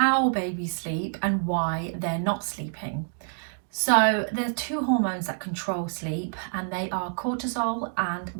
babies sleep and why they're not sleeping. So there's two hormones that control sleep, and they are cortisol and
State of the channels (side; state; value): left; silent; digital silence